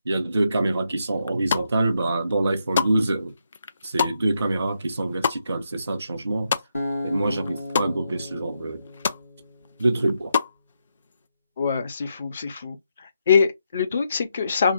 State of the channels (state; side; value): inverted; both; correlation -0.81